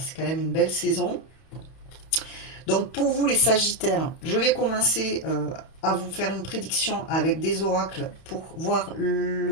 quand même une belle saison. Donc pour vous les Sagittaires, je vais commencer à vous faire une prédiction avec des oracles pour voir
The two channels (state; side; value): late; right; 31 ms